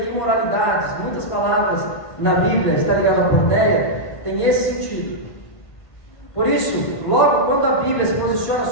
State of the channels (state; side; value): late; right; 1.6 ms